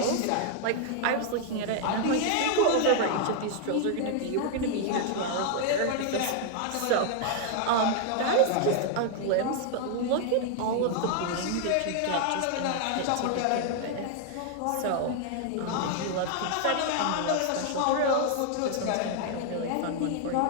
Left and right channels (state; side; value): different; both; correlation 0.00